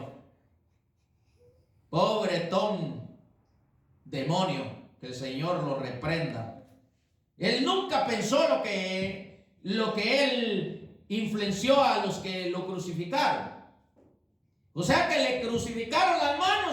pobretón demonio, que el Señor lo reprenda. Él nunca pensó lo que él influenció a los que lo crucificaron. O sea que le crucificaron las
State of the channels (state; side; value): identical; both; correlation 1.00